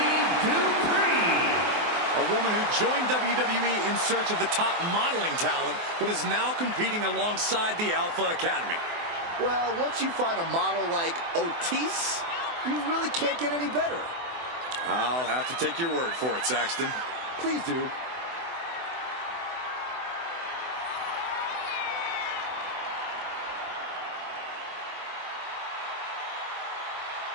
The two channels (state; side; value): late; left; 24 ms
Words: Dupree. A woman who joined WWE in search of the top modeling talent, but is now competing alongside the Alpha Academy. Well, once you find a model like Otis, you really can't get any better. I'll have to take your word for it, Saxton. Please do.